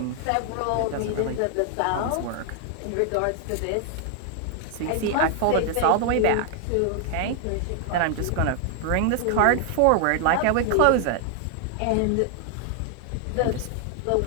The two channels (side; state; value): both; different; correlation 0.00